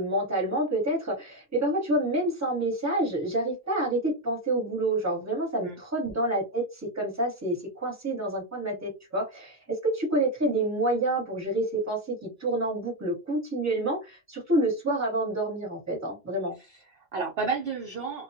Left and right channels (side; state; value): both; normal; correlation 0.09